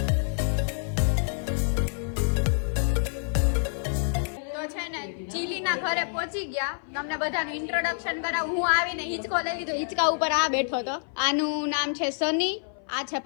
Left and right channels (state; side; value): silent; right; 56 dB below the other